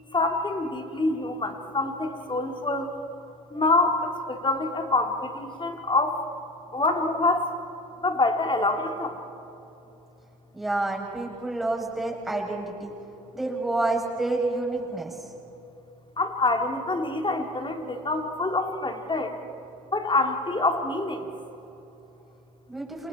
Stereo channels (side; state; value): both; normal; correlation 0.38